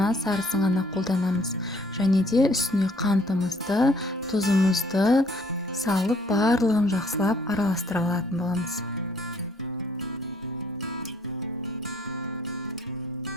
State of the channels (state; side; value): normal; both; correlation 0.62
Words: сарысын ғана қолданамыз. Және де үстіне қантымызды, тұзымызды салып, барлығын жақсылап араластыра алатын боламыз.